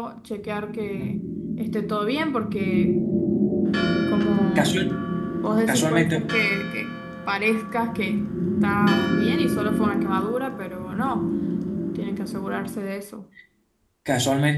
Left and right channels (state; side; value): identical; both; correlation 1.00